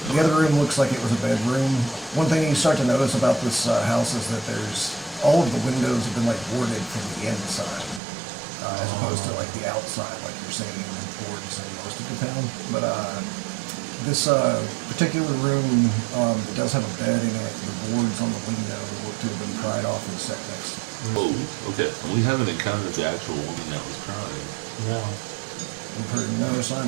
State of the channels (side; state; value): left; drops out; at 8.0 s